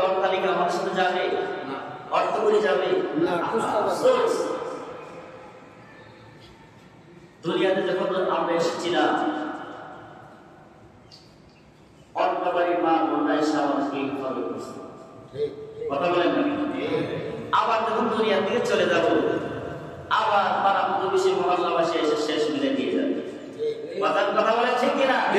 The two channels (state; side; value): identical; both; correlation 1.00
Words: অট্টালিকা আমার সাথে যাবে, অর্থ করে যাবে না। দুনিয়াতে যখন আমরা এসেছিলাম, অন্য বাড়ির মা বোনরা এসে আমাদেরকে ইনফর্ম করছে, কথা বলেন না? আবার যখন দুনিয়া থেকে চলে যাব, আবার পাড়া প্রতিবেশী মহল্লাবাসী এসে শেষ মিলে দিয়ে যাবে। কথা বলেন ঠিক কিনা?